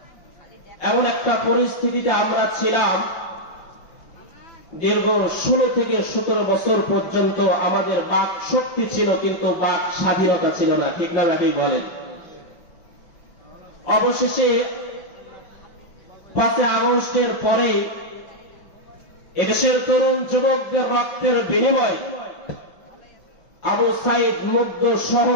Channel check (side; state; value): right; late; 6.0 ms